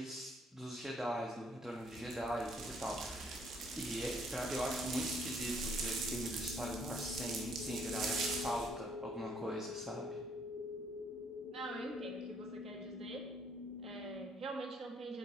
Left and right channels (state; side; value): normal; both; correlation 0.66